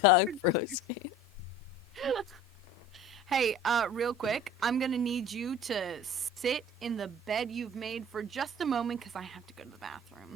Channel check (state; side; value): normal; both; correlation 0.43